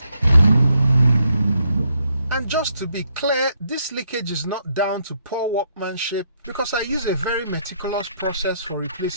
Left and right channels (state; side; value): inverted; both; correlation -0.75